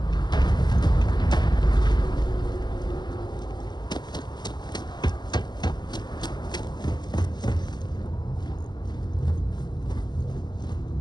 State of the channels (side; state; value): right; late; 0.21 ms